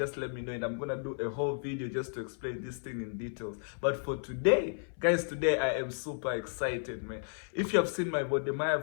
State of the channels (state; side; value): silent; right; 56 dB below the other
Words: let me know, and I'm gonna do a whole video just to explain this thing in details. But for today, guys, today I am super excited, man. If you have seen my